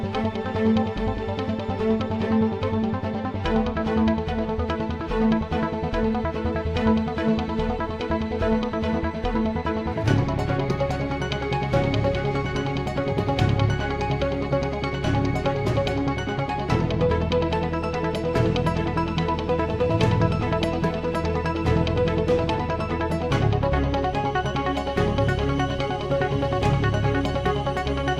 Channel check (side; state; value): both; identical; correlation 1.00